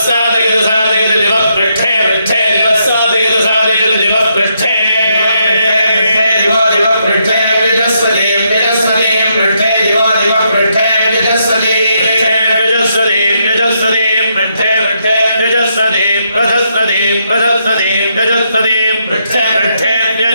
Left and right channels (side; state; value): both; inverted; correlation -0.78